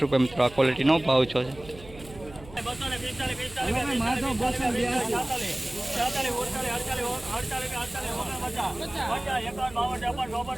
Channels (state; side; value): noise; right; hum, 18 dB below the sound